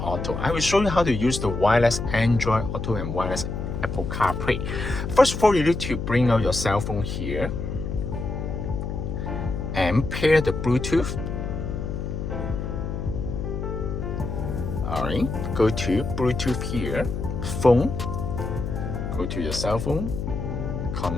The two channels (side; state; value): left; noise; hum, 4 dB below the sound